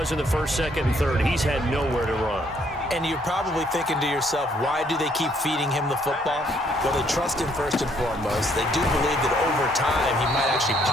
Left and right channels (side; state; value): both; normal; correlation 0.67